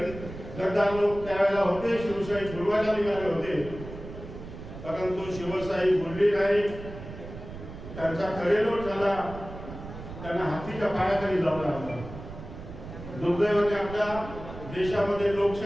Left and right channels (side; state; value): right; noise; rumble, 12 dB below the sound